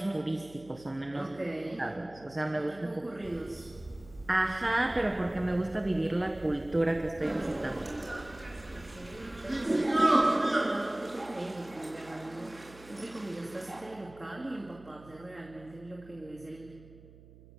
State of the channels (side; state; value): right; noise; hum, 21 dB below the sound